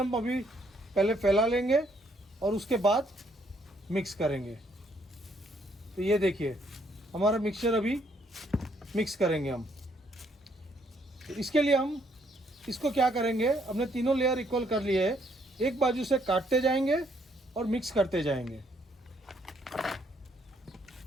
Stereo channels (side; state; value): both; normal; correlation 0.69